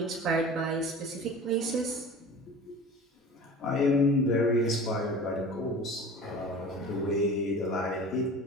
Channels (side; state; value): both; normal; correlation 0.39